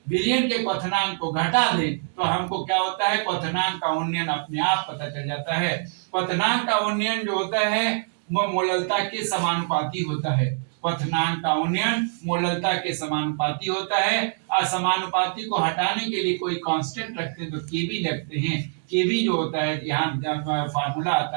विलयन के क्वथनांक को घटा दें तो हमको क्या होता है, क्वथनांक का उन्नयन अपने आप पता चल जाता है। क्वथनांक का उन्नयन जो होता है वो मोललता के समानुपाती होता है। क्वथनांक का उन्नयन मोललता के समानुपाती होता है। असमानुपाती को हटाने के लिए कोई कांस्टेंट रखते हैं तो केबी लगते हैं। केबी जो होता है, यहाँ फार्मूला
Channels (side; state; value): left; silent; digital silence